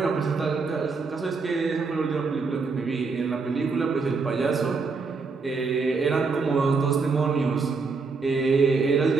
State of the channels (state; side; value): quieter; left; 4.5 dB